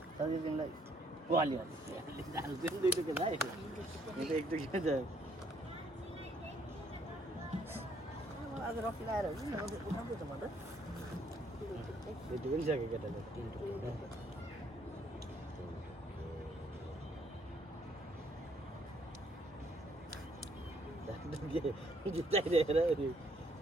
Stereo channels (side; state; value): both; normal; correlation 0.67